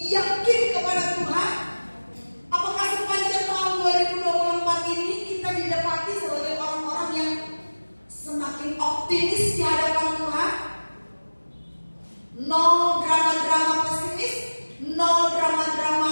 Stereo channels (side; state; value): both; inverted; correlation -1.00